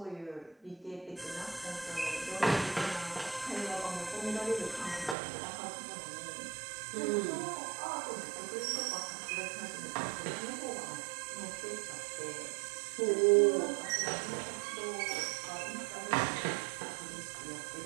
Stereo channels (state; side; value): drops out; left; at 5.2 s